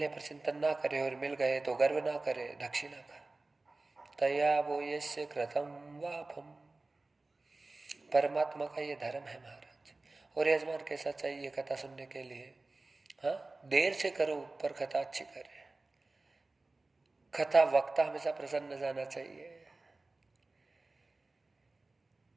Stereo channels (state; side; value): quieter; left; 3.3 dB